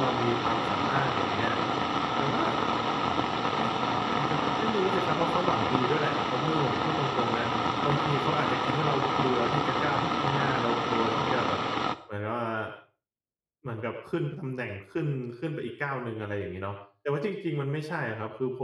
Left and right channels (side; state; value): both; identical; correlation 1.00